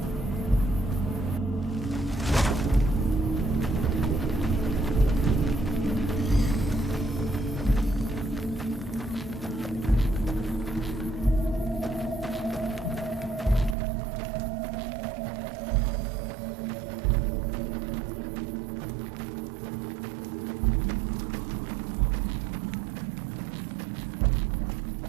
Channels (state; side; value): drops out; left; at 13.8 s